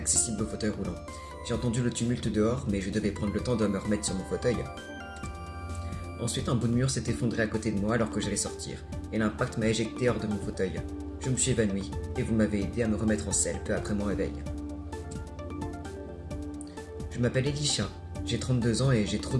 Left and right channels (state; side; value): identical; both; correlation 1.00